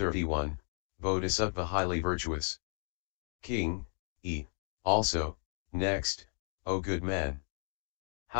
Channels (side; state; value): right; silent; digital silence